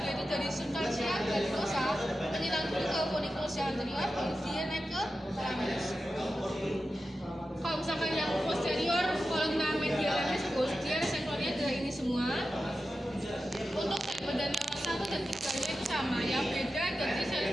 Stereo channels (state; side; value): normal; both; correlation 0.92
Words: dia itu dari substansia glandulosa menghilang dulu ke funiculus yang anterior, kemudian naik ke thalamus. Kalau misalkan yang posterior columna medial hemisphere dia reseptornya adalah ini semua. Untuk sel badan neuron 1 dan 3-nya itu sama, yang beda dari sel